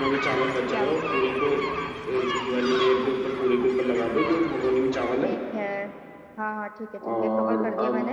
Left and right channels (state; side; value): identical; both; correlation 1.00